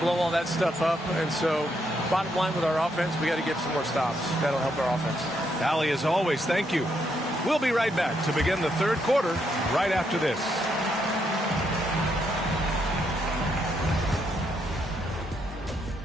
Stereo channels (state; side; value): normal; both; correlation 0.77